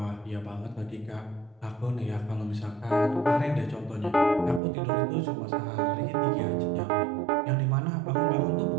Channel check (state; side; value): drops out; left; at 4.6 s